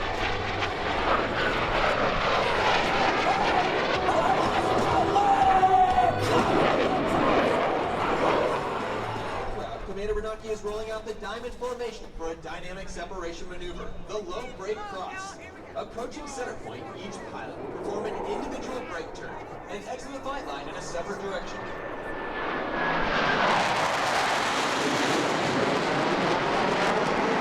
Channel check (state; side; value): identical; both; correlation 1.00